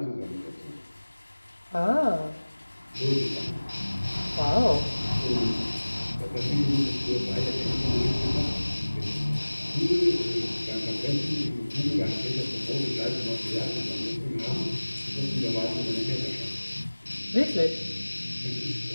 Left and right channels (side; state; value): both; inverted; correlation -1.00